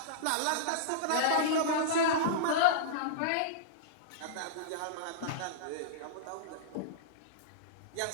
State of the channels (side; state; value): both; different; correlation -0.03